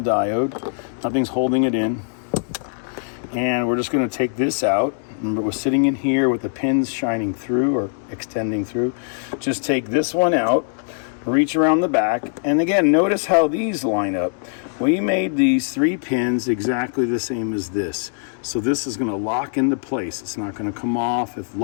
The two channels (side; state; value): right; silent; digital silence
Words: Nothing's holding it in. And we're just going to take this out. Remember, we're sitting in here with the pins shining through or extending through. Just take this one out, reach around the back, and again, notice how these line up. We made these 3 pins exactly the same as this. So this is going to lock into place. It's not going to come off if